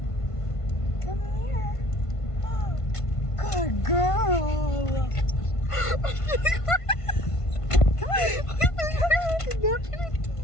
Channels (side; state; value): right; late; 1.5 ms